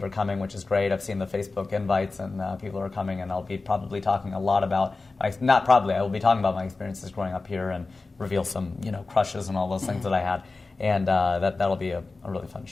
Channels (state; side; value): quieter; right; 3.7 dB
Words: are coming, which is great. I've seen the Facebook invites, and people are coming, and I'll be probably talking a lot about, I will be talking about my experiences growing up here and reveal some, crushes and all those things that I had. And that'll be a really fun